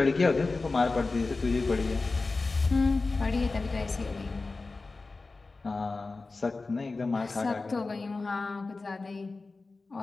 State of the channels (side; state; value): right; quieter; 3.7 dB